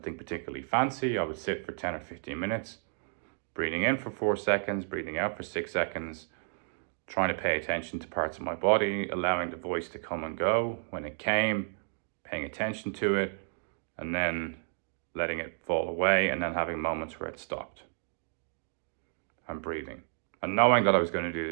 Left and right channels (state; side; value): silent; left; digital silence